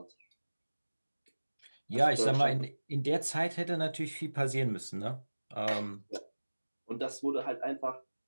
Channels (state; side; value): inverted; both; correlation -1.00